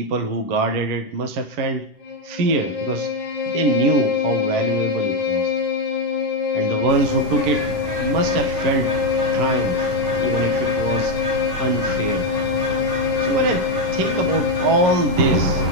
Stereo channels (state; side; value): late; left; 9.9 ms